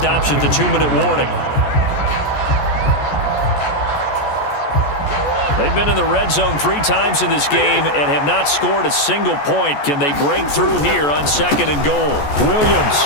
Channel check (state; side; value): late; right; 14 ms